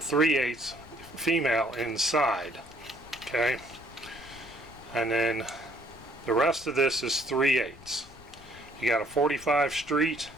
female inside. Okay, and then the rest of this is 3/8. You got a 45 street.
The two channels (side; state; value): left; noise; rumble, 21 dB below the sound